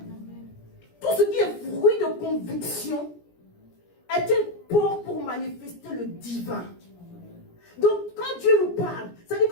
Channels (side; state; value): right; late; 17 ms